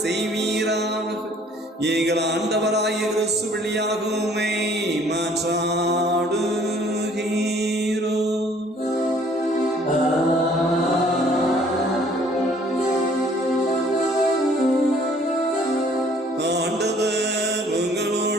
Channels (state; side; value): normal; both; correlation 0.58